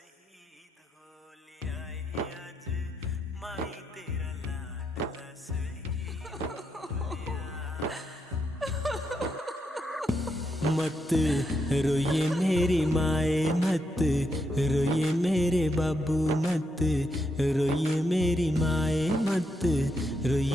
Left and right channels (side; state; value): both; normal; correlation 0.81